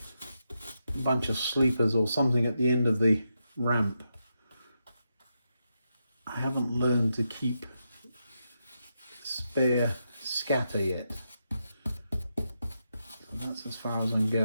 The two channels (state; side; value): inverted; both; correlation -0.84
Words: bunch of sleepers or something at the end of the ramp. I haven't learned to keep spare scatter yet. That's as far as I'm